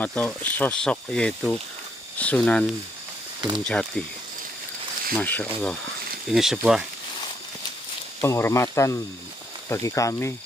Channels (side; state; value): both; normal; correlation 0.73